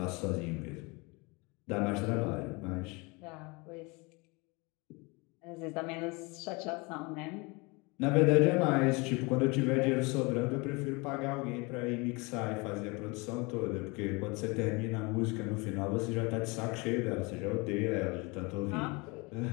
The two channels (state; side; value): quieter; right; 27.4 dB